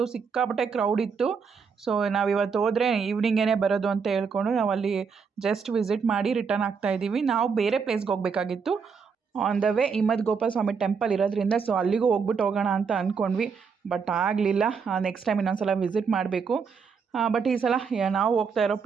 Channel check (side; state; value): left; quieter; 5.8 dB